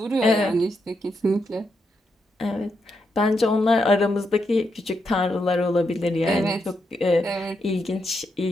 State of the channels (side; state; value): both; normal; correlation 0.82